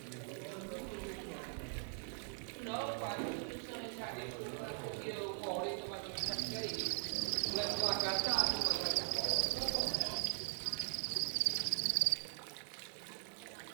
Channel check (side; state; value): left; silent; 51 dB below the other